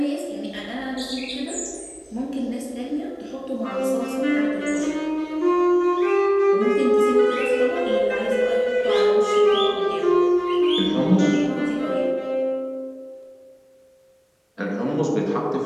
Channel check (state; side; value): identical; both; correlation 1.00